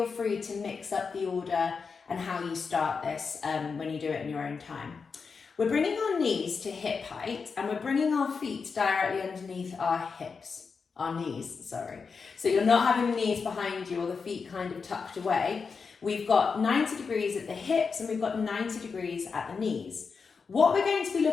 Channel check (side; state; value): right; quieter; 5.2 dB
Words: free to mix up the order and how you start this when you do it in your own time. We're bringing our knees to hip height and we're bringing our feet directly underneath our knees. So you're not having the knees behind you or the feet kind of tucked away. We've got 90 degrees at the hips and we've got 90 degrees at the knees. What we're going to be